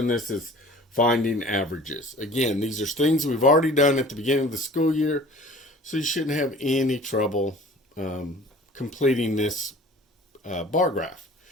this is finding averages. Again, these are things we've already done at the beginning of the school year, so you shouldn't have any trouble completing this bar graph.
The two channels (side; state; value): both; normal; correlation 0.46